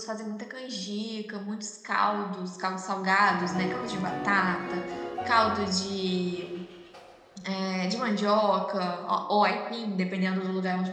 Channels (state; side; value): identical; both; correlation 1.00